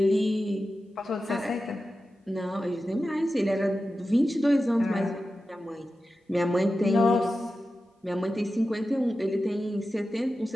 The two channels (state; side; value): normal; both; correlation 0.92